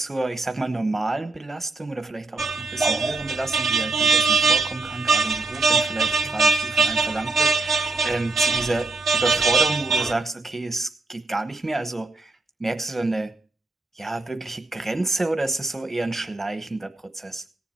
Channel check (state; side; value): quieter; left; 3.4 dB